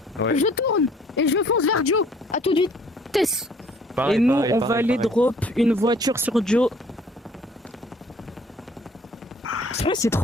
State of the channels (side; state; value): both; normal; correlation 0.57